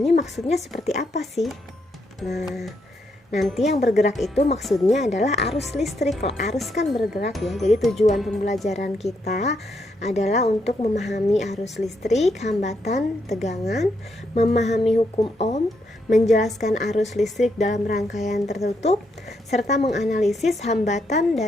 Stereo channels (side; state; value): both; normal; correlation 0.78